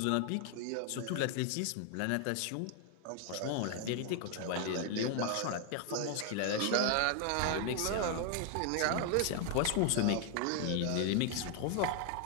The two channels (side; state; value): both; different; correlation 0.00